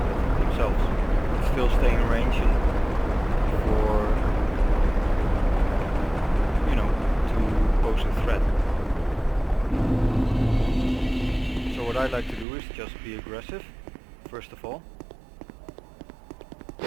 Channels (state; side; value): drops out; left; at 12.5 s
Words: bit themselves, but still stay in range and for, you know, to pose a threat. So what I like to do is just be aggressive, first of all,